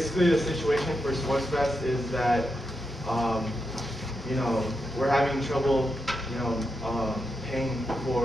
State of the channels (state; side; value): normal; both; correlation 0.85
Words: the situation for Sports Fest is that, we're having trouble, paying